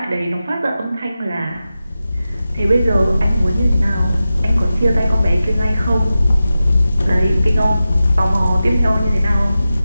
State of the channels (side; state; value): both; inverted; correlation -0.93